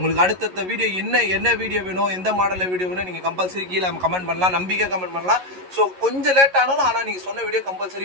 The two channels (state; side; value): late; left; 11 ms